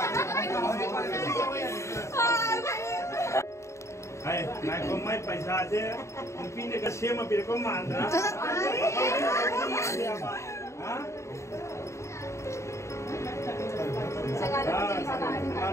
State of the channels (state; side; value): late; right; 0.14 ms